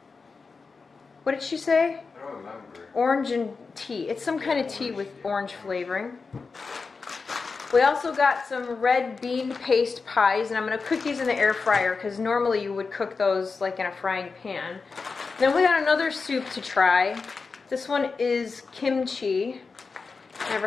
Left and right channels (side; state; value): right; quieter; 4.6 dB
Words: What did she say? I don't remember. Orange and tea. It's some kind of tea with orange flavoring. We also got some red bean paste pies, and I'm going to cook these in the air fryer because normally you would cook those like in a frying pan. Then we got another soup to try. This one is kimchi.